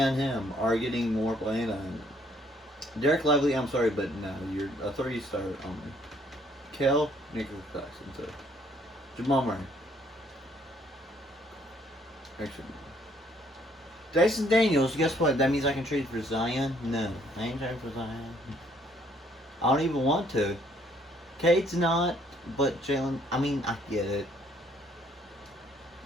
him are getting more playing time. Derek Lively, I'm sorry, but no, you're a 3-star only. Kel, Nicholas Jackson, so. Jamal Murray. Actually. Dyson Daniels, guess what? That means I can trade for Zion? No, I ain't trading for Zion. I don't even want to. Cade's not, but Jalen, I mean, I get it.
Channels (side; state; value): both; normal; correlation 0.65